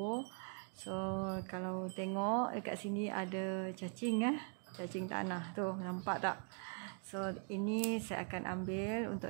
So, kalau tengok dekat sini ada cacing cacing tanah tu, nampak tak? So, ini saya akan ambil untuk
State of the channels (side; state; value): left; quieter; 39.8 dB